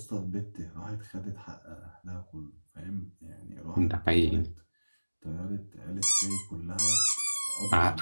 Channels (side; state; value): both; inverted; correlation -1.00